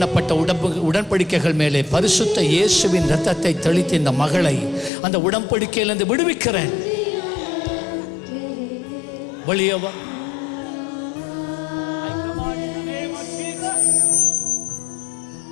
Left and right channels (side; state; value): right; drops out; at 4.9 s